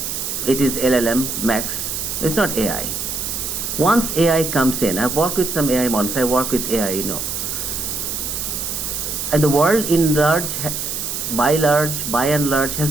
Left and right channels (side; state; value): right; noise; hiss, 3 dB below the sound